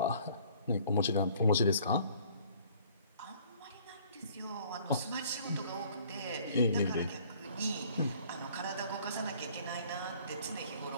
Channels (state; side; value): inverted; both; correlation -0.56